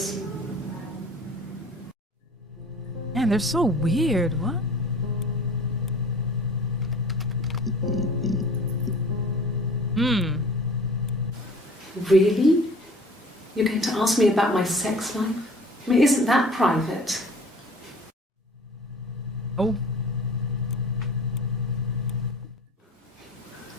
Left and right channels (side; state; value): both; normal; correlation 0.46